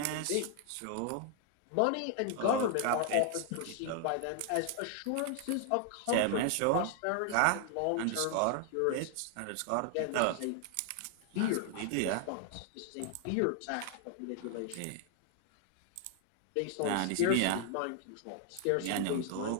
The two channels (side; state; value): both; different; correlation 0.00